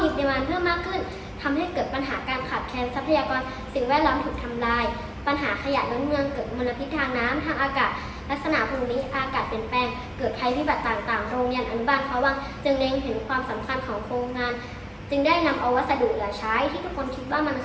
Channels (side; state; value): both; identical; correlation 1.00